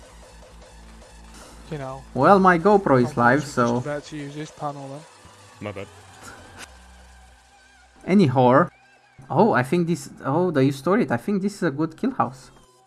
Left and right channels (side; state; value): both; identical; correlation 1.00